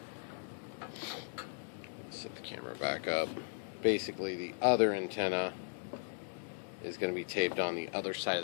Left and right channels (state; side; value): silent; right; digital silence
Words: Let's set the camera back up. Basically the other antenna is going to be taped on the other side